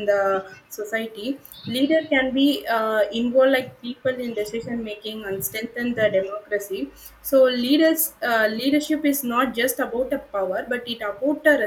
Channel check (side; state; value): both; identical; correlation 1.00